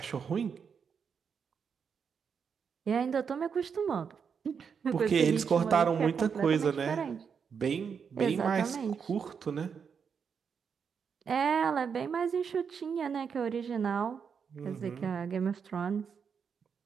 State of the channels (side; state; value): left; quieter; 6.6 dB